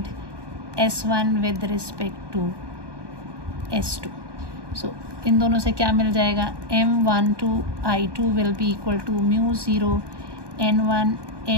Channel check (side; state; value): left; late; 1.2 ms